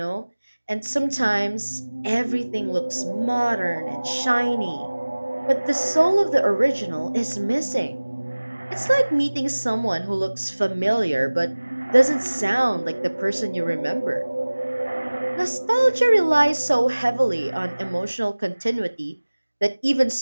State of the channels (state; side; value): inverted; both; correlation -1.00